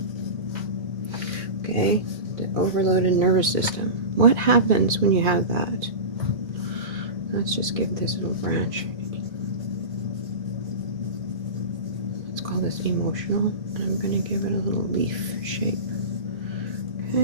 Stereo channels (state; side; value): late; left; 2.5 ms